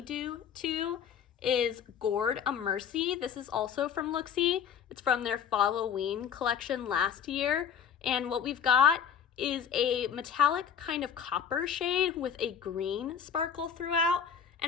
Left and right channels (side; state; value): right; quieter; 7.9 dB